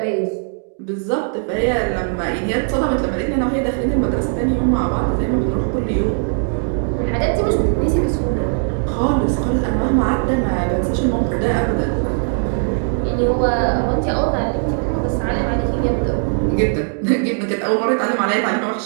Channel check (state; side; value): silent; left; 66 dB below the other